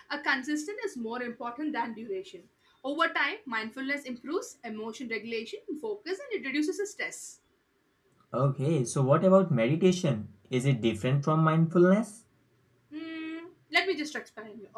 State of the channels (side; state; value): both; identical; correlation 1.00